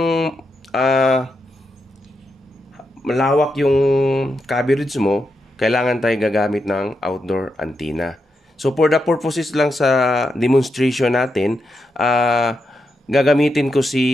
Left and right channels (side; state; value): both; normal; correlation 0.85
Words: malawak yung coverage mo, kailangan tayo gagamit ng outdoor antenna. So for the purposes lang sa demonstration natin, gagamitin ko